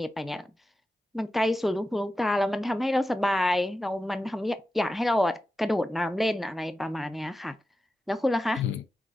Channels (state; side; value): normal; both; correlation 0.92